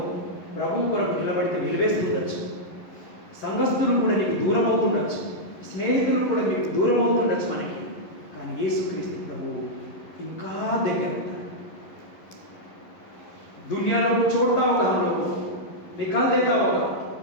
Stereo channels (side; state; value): right; late; 11 ms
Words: ప్రభు కొరకు నిలబడితే వెలివేస్తుండొచ్చు, సంఘస్థులు కూడా నీకు దూరం అవుతుండొచ్చు, స్నేహితులు కూడా మీకు దూరం అవుతుండొచ్చు మనకి. కానీ యేసుక్రీస్తు ప్రభు ఇంకా దగ్గర ఉంటాడు. दुनिया लोग छोड़ता होगा, हम लोग को निकाल देता होगा,